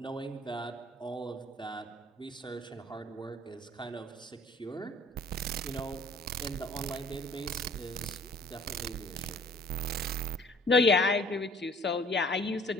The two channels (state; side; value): normal; both; correlation 0.54